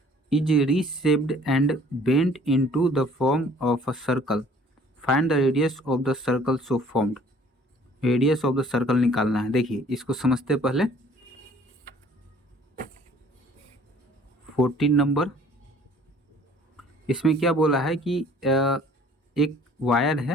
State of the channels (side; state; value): both; normal; correlation 0.54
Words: is reshaped and bent into the form of a circle. Find the radius of the circle so formed. Radius of the circle निकालना है। देखिए इसको समझते पहले 14 number, इसमें क्या बोला है कि एक वायर